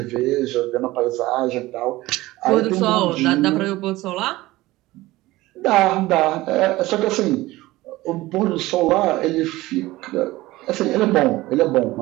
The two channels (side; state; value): left; quieter; 18.5 dB